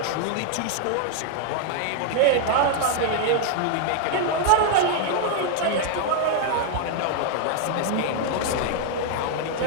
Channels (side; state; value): both; different; correlation 0.00